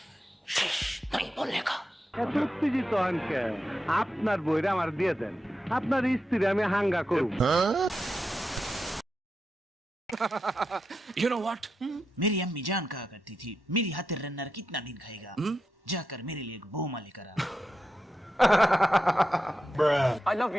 नहीं बोलने का। এত উত্তেজিত হন কেন? আপনার বইরা আমার দিয়ে দেন, আপনার স্ত্রী আমি হাঙ্গা করব। You know what? मेरी अम्मी जान कहा करती थी, मेरी हाथेर रन्नर कितना दिन खाएगा, जाकर मेरे लिए एक बहुमा लेकर आ। I love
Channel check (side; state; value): both; normal; correlation 0.88